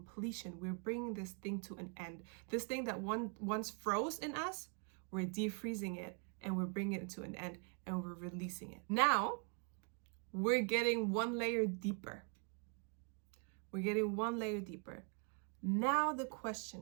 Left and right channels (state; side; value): quieter; left; 39.9 dB